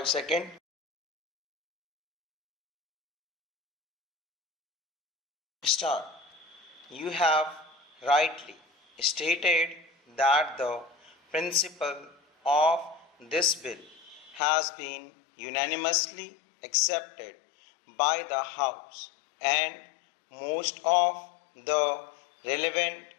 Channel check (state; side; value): drops out; right; at 14.4 s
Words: seconds. Start. You have rightly stated that the principle of this bill has been unanimously accepted by the House, and most of the relevant